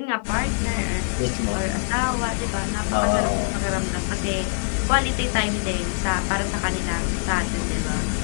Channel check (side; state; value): right; silent; 63 dB below the other